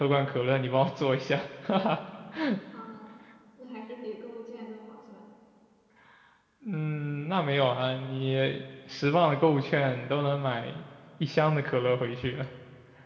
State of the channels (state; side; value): identical; both; correlation 1.00